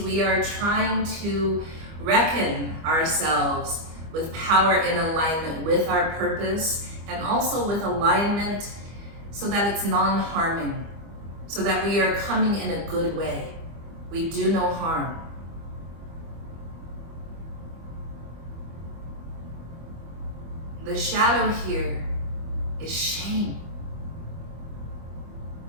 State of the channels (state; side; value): late; left; 25 ms